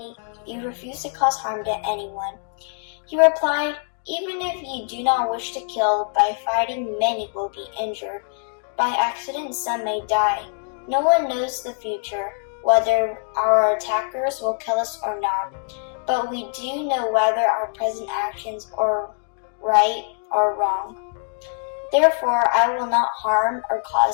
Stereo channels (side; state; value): right; silent; 63 dB below the other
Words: to anyone. He replied, "Even if you do not wish to kill, by fighting many will be injured. By accident some may die. No one knows the future, whether our attackers will kill us or not. But we do know whether our present actions are right or wrong. Therefore, I will not harm or